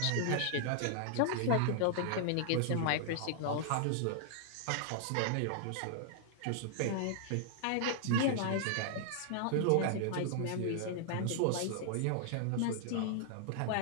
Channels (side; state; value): both; different; correlation -0.01